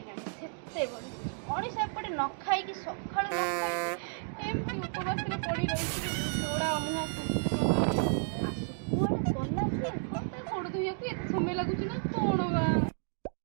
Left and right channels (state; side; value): silent; left; 56 dB below the other